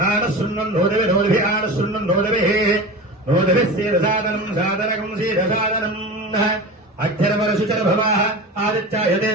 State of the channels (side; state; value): both; normal; correlation 0.30